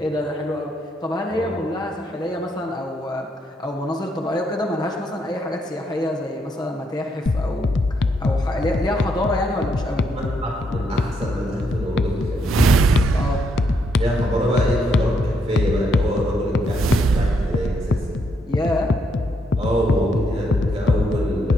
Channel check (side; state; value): both; normal; correlation 0.76